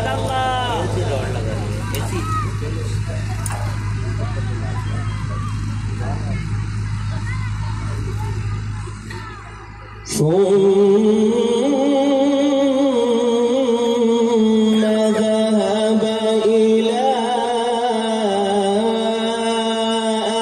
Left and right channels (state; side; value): identical; both; correlation 1.00